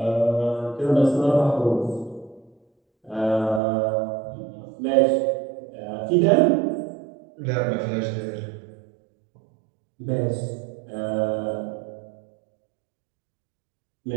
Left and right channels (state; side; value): drops out; left; at 3.6 s